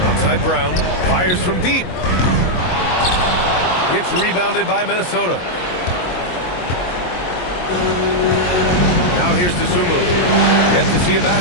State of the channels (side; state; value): right; late; 22 ms